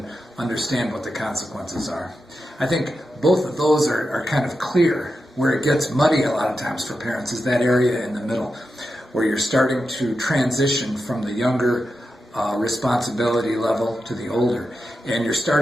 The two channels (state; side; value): normal; both; correlation 0.89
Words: understand what the consequences are. I think both of those are kind of clear. Where it gets muddy a lot of times for parents is that area in the middle, where you're starting to transition from the younger responsibility level to the older. And you're